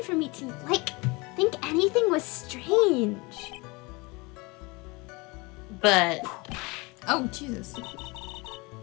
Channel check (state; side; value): quieter; right; 25.8 dB